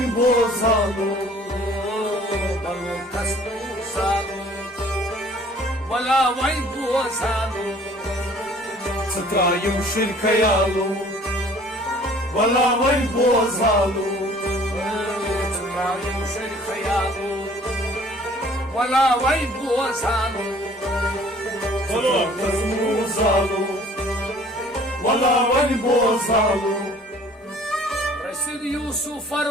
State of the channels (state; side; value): normal; both; correlation 0.53